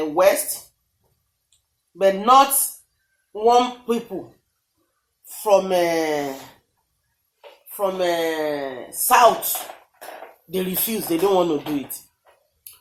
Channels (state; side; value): identical; both; correlation 1.00